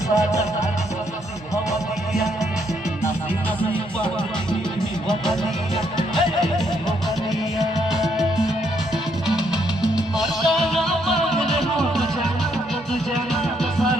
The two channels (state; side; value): normal; both; correlation 0.73